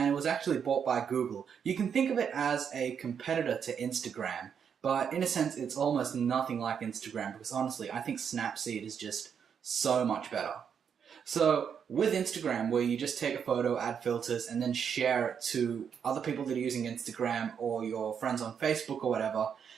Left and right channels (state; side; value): quieter; left; 7.4 dB